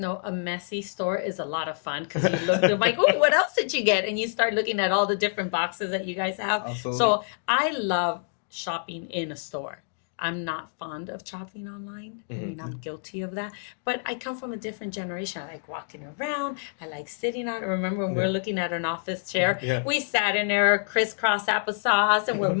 a messy store is a lot of fun because you look, they're like, oh, what else did you get? And you start looking at all the different boxes that you guys have. Absolutely. So I love shopping in a store. I'm not fond of shopping online. I mean, I'm guilty of that. But I come from a different generation. I like walking around. I like sitting out. I remember when we were looking at an office chair, we sat in there, crisscross applesauce, and we're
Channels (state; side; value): silent; right; digital silence